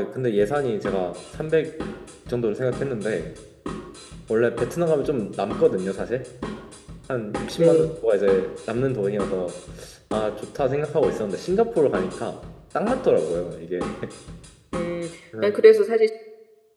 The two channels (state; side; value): identical; both; correlation 1.00